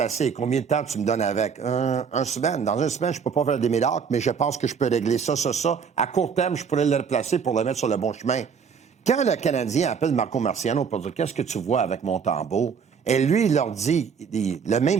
Combien de temps tu me donnes avec? Un semaine. Dans une semaine, je ne peux pas faire des miracles, mais je pense que je peux régler ça. À court terme, je pourrais le replacer pour le mettre sur le bon chemin. Quand le Canadien appelle Marco Marciano pour dire « Qu'est-ce que tu vois avec Montembeault? » Et lui, il leur dit le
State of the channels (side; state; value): left; quieter; 6.5 dB